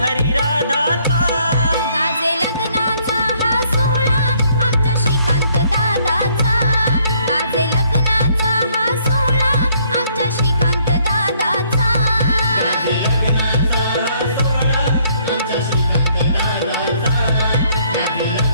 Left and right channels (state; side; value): inverted; both; correlation -0.66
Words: राधाचा गाजे लग्नाचा हा सोहळा आमच्या श्रीकांत दादाचा गाजे लग्नाचा हा सोहळा आमच्या श्रीकांत दादाचा